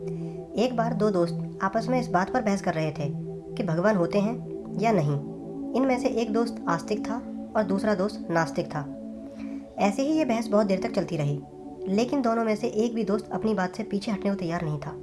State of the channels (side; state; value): both; identical; correlation 1.00